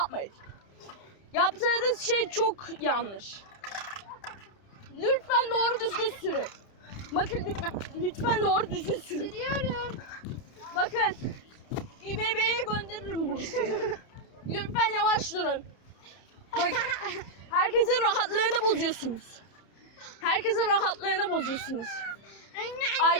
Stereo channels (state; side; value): late; right; 31 ms